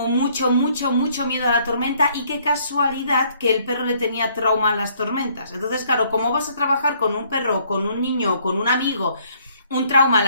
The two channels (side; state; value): both; inverted; correlation -0.64